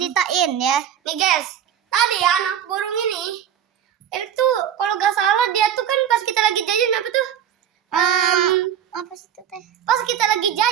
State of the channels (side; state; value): left; quieter; 9.4 dB